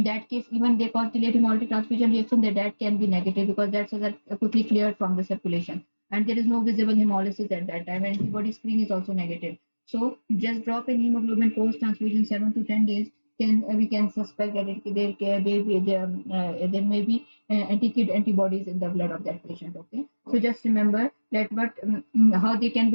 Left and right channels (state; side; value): inverted; both; correlation -1.00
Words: that case, even they cause delayed hemolytic transfusion reaction, that can be negative because that's quickly cleared from the circulation, and there is no visible hemolysis at that time. Antibody screen is also negative. So just drop in hemoglobin post transfusion 7 to 10 days. We can suspect that there may be anti-kid antibodies in the blood of that patient. Okay, so just remember that how they can